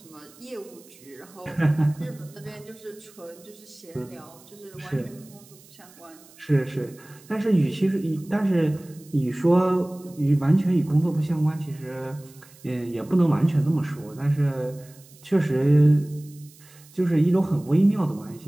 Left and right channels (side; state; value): right; noise; hiss, 24 dB below the sound